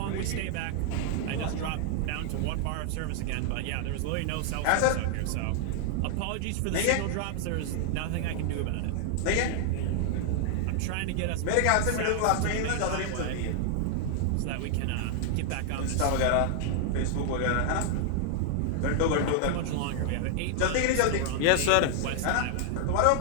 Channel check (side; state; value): both; different; correlation 0.00